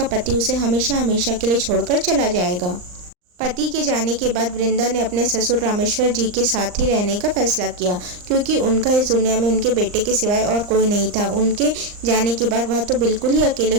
पति उसे हमेशा हमेशा के लिए छोड़कर चला जाएगा। पति के जाने के बाद वृंदा ने अपने ससुर रामेश्वर जी के साथ ही रहने का फैसला किया, क्योंकि उनका इस दुनिया में उनके बेटे के सिवाय और कोई नहीं था। उनके जाने के बाद वह तो बिल्कुल ही अकेले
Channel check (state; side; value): late; left; 39 ms